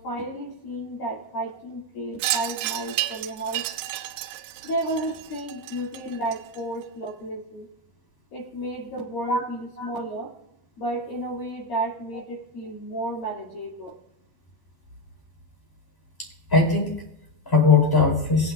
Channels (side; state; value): right; late; 1.0 ms